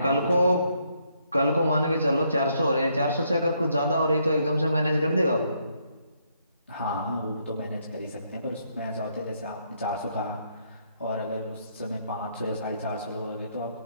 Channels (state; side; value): inverted; both; correlation -0.73